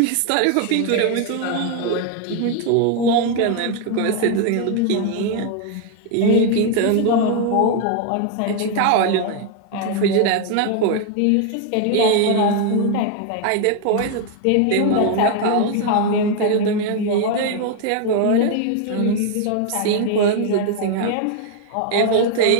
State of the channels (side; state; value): both; different; correlation 0.01